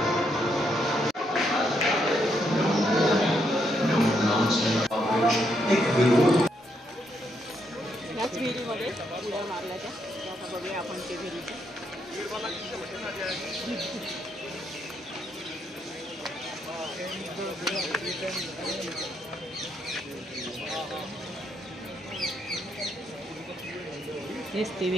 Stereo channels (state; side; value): normal; both; correlation 0.77